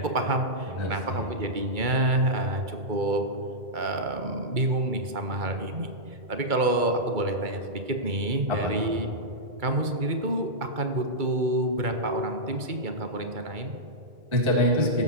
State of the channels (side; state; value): left; late; 2.2 ms